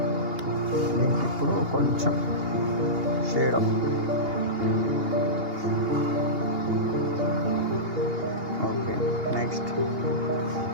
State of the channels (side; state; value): left; late; 2.8 ms